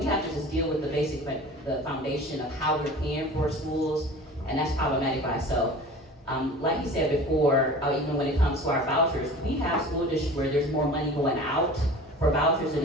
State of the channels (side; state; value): both; normal; correlation 0.40